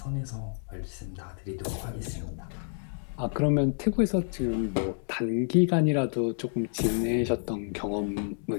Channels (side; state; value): right; silent; digital silence